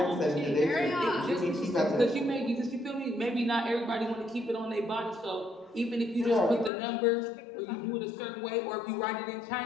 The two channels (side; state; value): right; drops out; at 6.7 s